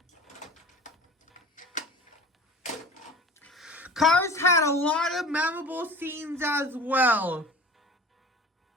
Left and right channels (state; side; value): normal; both; correlation 0.39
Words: Cars had a lot of memorable scenes as well.